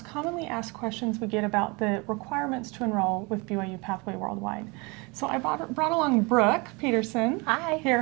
commonly asked questions we get about the requirements to enroll with BYU-Pathway Worldwide. So I brought along Brooke Peterson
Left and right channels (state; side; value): quieter; left; 27.9 dB